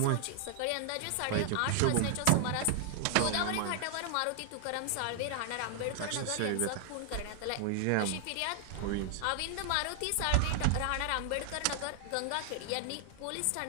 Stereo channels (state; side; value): different; both; correlation 0.00